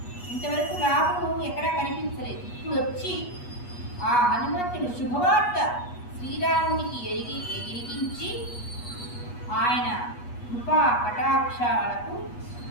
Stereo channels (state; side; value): late; right; 8.3 ms